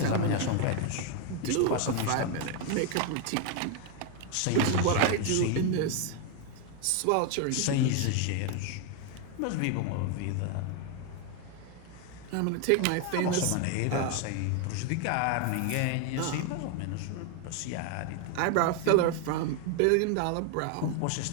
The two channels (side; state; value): both; different; correlation 0.01